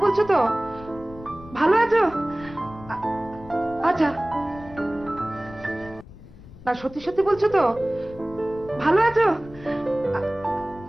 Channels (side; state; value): left; noise; rumble, 19 dB below the sound